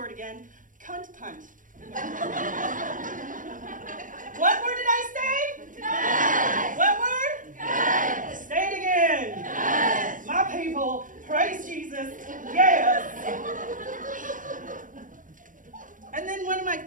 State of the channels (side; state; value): left; late; 0.38 ms